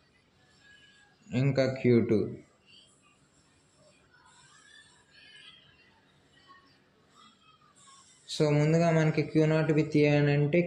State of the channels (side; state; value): both; identical; correlation 1.00